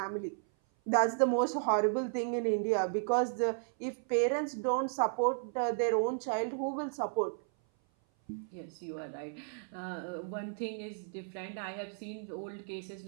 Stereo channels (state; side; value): silent; left; 55 dB below the other